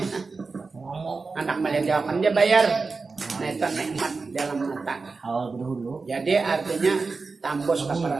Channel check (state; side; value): quieter; left; 4.2 dB